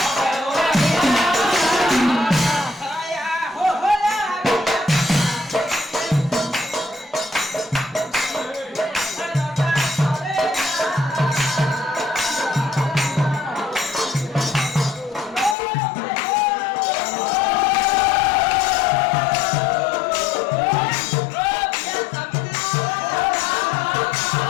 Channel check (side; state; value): right; drops out; at 15.6 s